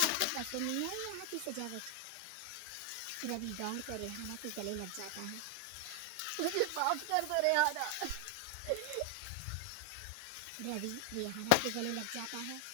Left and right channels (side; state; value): both; different; correlation 0.00